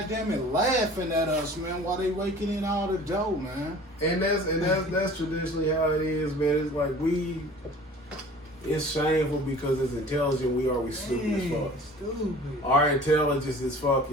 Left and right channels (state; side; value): normal; both; correlation 0.45